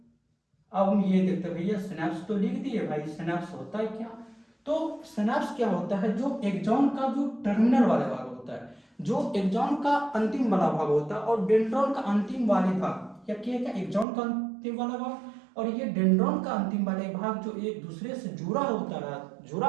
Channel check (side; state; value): left; drops out; at 14.1 s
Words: अब हम ये देखते हैं भैया, सिनेप्स तो लिख दिए भाई, सिनेप्स होता है क्या? तो सिनेप्स क्या होता है? जो एक्सॉन का जो टर्मिनल वाला भाग होता है, जो एक्सॉन का अंतिम वाला भाग होता है, और डेंड्रॉन का अंतिम वाले भाग, या क्या एक्सॉन का अंतिम वाला भाग और ये डेंड्रॉन का अंतिम वाले भाग जो एक दूसरे से जुड़ा